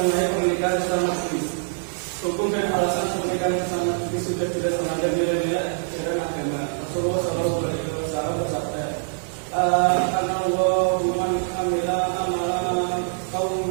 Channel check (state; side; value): silent; left; digital silence